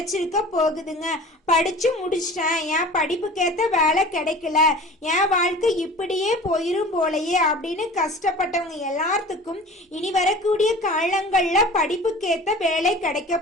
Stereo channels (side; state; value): both; normal; correlation 0.40